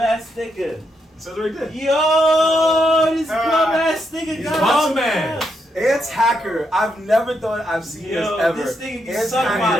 nigga. It says right there. Yo, this bum ass nigga He's got bum us. man. Ants Hacker. I've never thought I've seen this ever. This thing can Ants suck my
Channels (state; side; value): normal; both; correlation 0.80